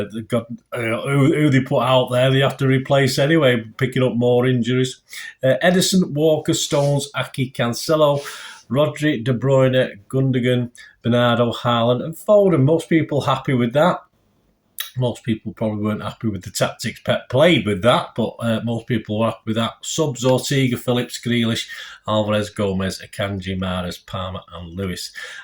got who they put out there, they have to replace anyway, picking up more injuries. Ederson, Walker, Stones, Aki, Cancelo, Rodri, De Bruyne, Gundogan, Bernardo, Haaland and Foden. Most people happy with that. Most people probably weren't happy with the tactics Pep played with that, but most people were happy with that. Subs, Ortega, Phillips, Grealish, Alvarez, Gomez, Akanji, Mahrez, Palmer and Lewis.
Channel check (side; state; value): both; identical; correlation 1.00